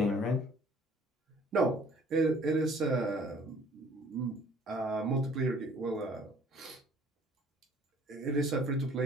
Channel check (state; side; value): normal; both; correlation 0.55